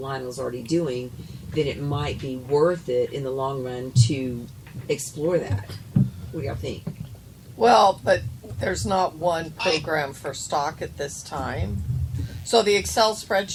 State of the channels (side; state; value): both; identical; correlation 1.00